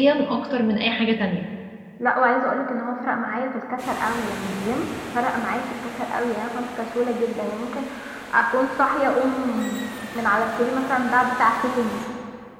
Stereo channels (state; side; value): identical; both; correlation 1.00